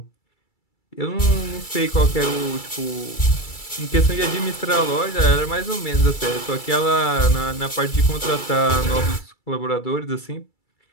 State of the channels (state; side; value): late; right; 2.3 ms